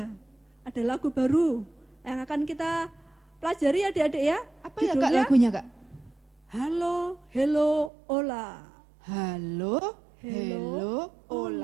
Ada lagu baru yang akan kita pelajari adik-adik ya. Apa ya Kak Judulnya, lagunya Kak? Halo, hello, ola. Halo, hello,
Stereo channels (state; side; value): drops out; left; at 7.9 s